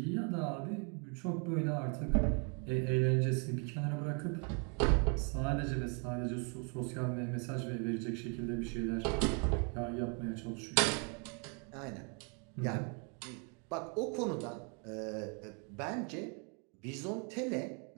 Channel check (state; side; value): quieter; left; 37.3 dB